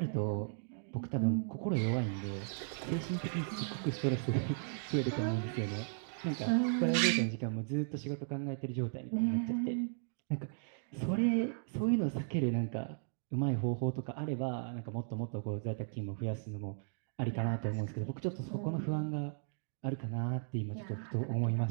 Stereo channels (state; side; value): silent; left; digital silence